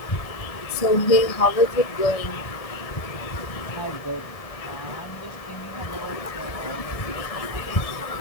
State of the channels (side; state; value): right; late; 1.6 ms